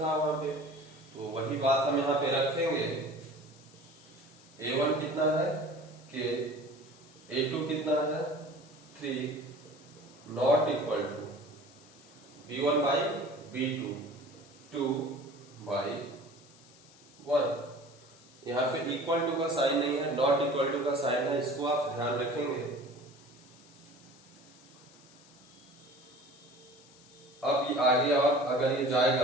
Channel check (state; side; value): noise; left; hiss, 24 dB below the sound